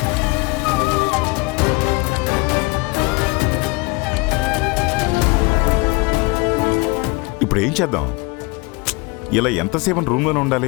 ఇప్పుడు ఏం చేద్దాం? ఇలా ఎంతసేపు రూమ్లోనే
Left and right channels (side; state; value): right; quieter; 26.4 dB